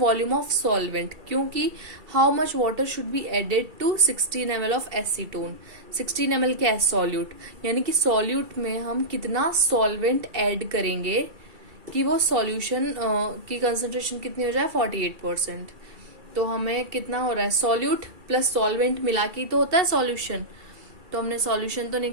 ऑफ सॉल्वेंट, क्योंकि how much water should be added to 16 ml of acetone. 16 ml क्या है? सॉल्यूट, यानी कि सॉल्यूट में हम कितना सॉल्वेंट ऐड करेंगे कि वो सॉल्यूशन की कंसंट्रेशन कितनी हो जाए? 48%। तो हमें कितना हो रहा है? सॉल्यूट प्लस सॉल्वेंट मिला के तो होता है सॉल्यूशन। तो हमने सॉल्यूशन तो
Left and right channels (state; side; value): late; left; 2.3 ms